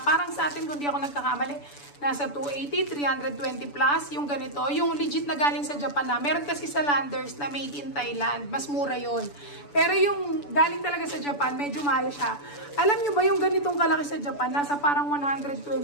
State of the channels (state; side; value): late; right; 6.9 ms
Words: Parang sa atin, kung di ako nagkakamali, nasa 280, 320 plus. Yung ganito, yung legit na galing sa Japan na. Meron kasi sa Landers na made in Thailand. Mas mura yon. Pero yung galing talaga sa Japan, medyo mahal siya. Alam nyo ba yung ganitong kalaki sa Japan, nasa parang 120